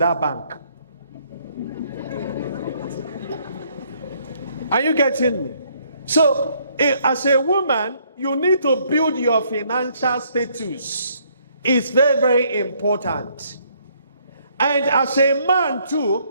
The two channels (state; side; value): inverted; both; correlation -0.67